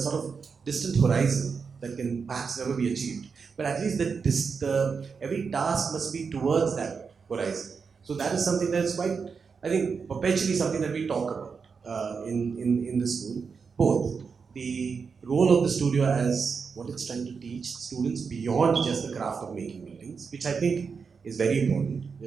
of distant horizon that can perhaps never be achieved. But at least every task must be towards that horizon. So that is something that is quite, I think, perpetually something that we talk about in the school. Both the role of the studio as what it's trying to teach students beyond just the craft of making buildings, which I think is very important.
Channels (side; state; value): left; quieter; 5.5 dB